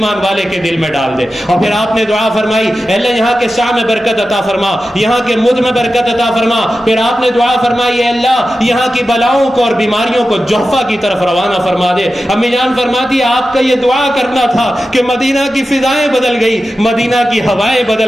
والے کے دل میں ڈال دے. اور پھر آپ نے دعا فرمائی اے اللہ یہاں کے سا میں برکت عطا فرما, یہاں کے مد میں برکت عطا فرما. پھر آپ نے دعا فرمائی اے اللہ یہاں کی بلاؤں کو اور بیماریوں کو جحفہ کی طرف روانہ فرما دے. امی جان فرماتی آپ کا یہ دعا کرنا تھا کہ مدینہ کی فضائیں بدل گئی, مدینہ کی ہوائیں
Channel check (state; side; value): normal; both; correlation 0.92